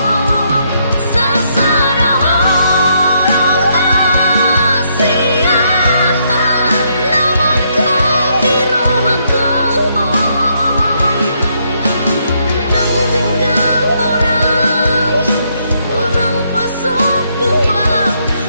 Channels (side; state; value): both; inverted; correlation -0.74